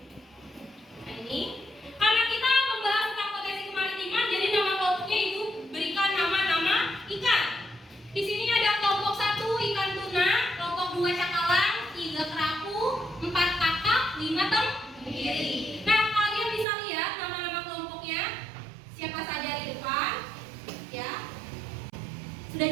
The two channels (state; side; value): drops out; left; at 16.7 s